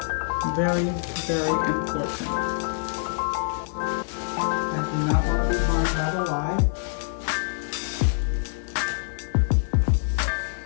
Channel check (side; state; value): right; silent; 61 dB below the other